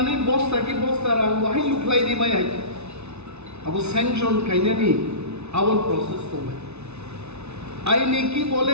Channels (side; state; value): left; late; 0.81 ms